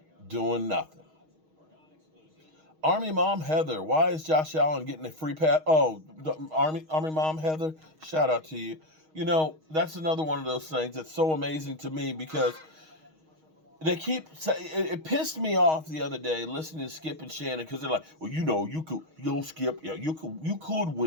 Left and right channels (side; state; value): left; late; 6.4 ms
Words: Doing nothing. Army Mom Heather, why is Josh Allen getting a free pass? Oh, Army Mom Heather, shout out to you. That's another one of those things that's so amazing to me because they keep saying, it pissed me off the other day listening to Skip and Shannon because they're like, well, Skip, yeah, you could